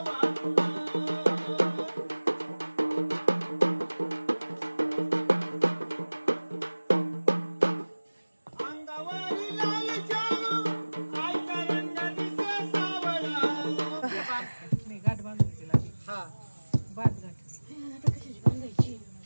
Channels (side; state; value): both; inverted; correlation -1.00